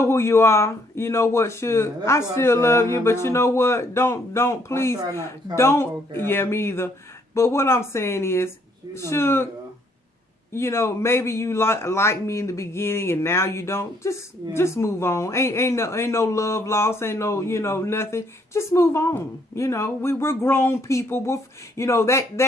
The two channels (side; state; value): both; normal; correlation 0.68